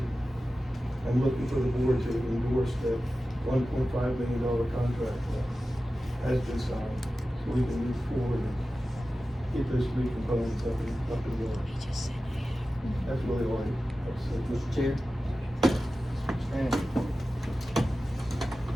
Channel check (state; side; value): normal; both; correlation 0.94